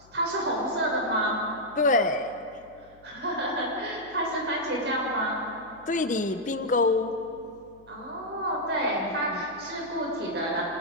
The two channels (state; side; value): noise; left; hum, 26 dB below the sound